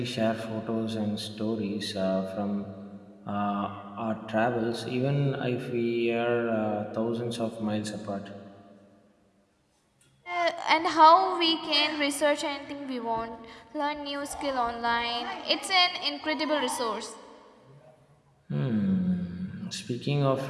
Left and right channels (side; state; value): both; identical; correlation 1.00